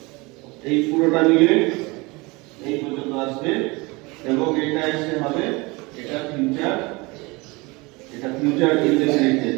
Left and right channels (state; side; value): quieter; left; 25.0 dB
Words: এই পুরোটা মিলে এই পর্যন্ত আসবে, এবং এটা এসে হবে এটা ফিউচার এটা ফিউচার ইনডেফিনিট